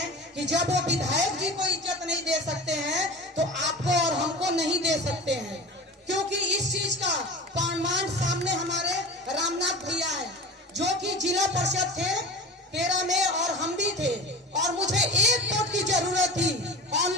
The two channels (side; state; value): both; normal; correlation 0.34